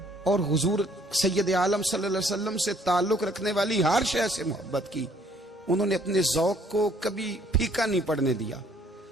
اور حضور سید عالم صلی اللہ علیہ وسلم سے تعلق رکھنے والی ہر شے سے محبت کی، انہوں نے اپنے ذوق کو کبھی پھیکا نہیں پڑنے دیا،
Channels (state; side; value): normal; both; correlation 0.62